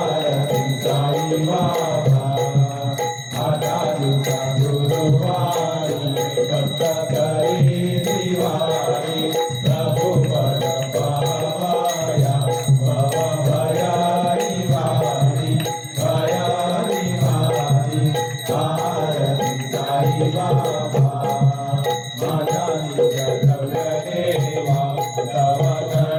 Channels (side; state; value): both; identical; correlation 1.00